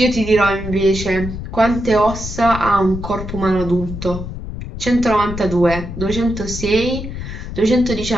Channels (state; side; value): noise; left; rumble, 8 dB below the sound